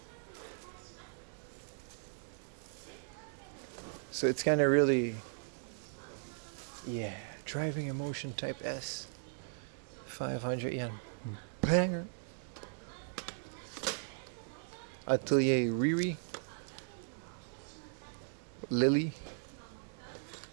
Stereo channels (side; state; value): left; silent; digital silence